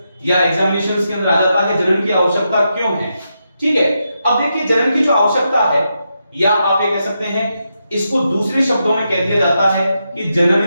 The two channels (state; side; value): inverted; both; correlation -0.84